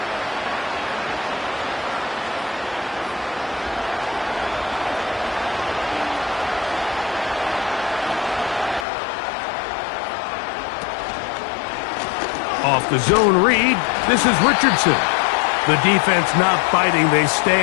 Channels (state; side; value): drops out; right; at 8.8 s